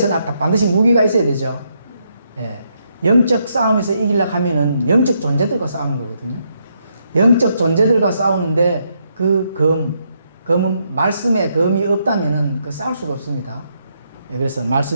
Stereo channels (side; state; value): both; inverted; correlation -0.77